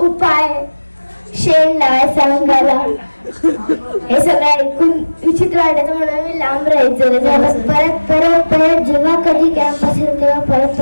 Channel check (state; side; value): inverted; both; correlation -1.00